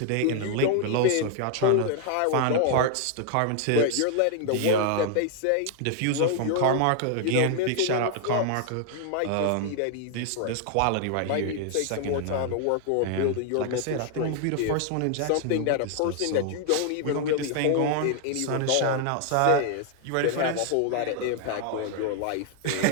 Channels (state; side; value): different; both; correlation 0.00